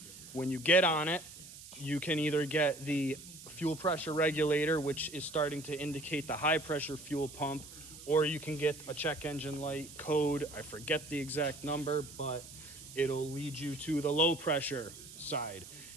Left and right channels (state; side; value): noise; right; hiss, 15 dB below the sound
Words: when you get on it, you can either get the fuel pressure regulator, which is starting to indicate the high pressure fuel pump, or you can get a check engine light code. I forget the exact number, but it'll lead you to the low pressure side.